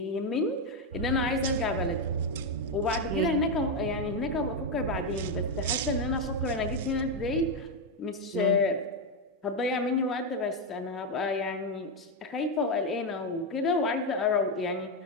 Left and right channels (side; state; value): both; normal; correlation 0.06